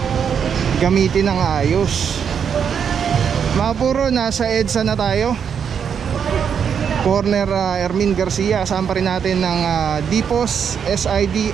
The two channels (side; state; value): left; quieter; 7.4 dB